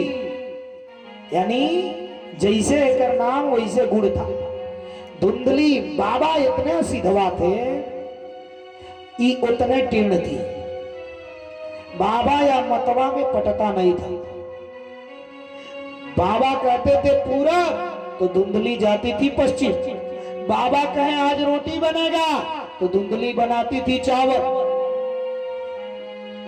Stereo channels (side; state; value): both; identical; correlation 1.00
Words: यानी जैसे एकर नाम वैसे गुण था। धुंधली। बाबा इतने सिधवा थे, ये उतने टीर्ण थी। बाबा या मतवा में पटता नहीं था। बाबा कहते थे पूरब, तो धुंधली जाती थी पश्चिम। बाबा कहे आज रोटी बनेगा, तो धुंधली बनाती थी चावल।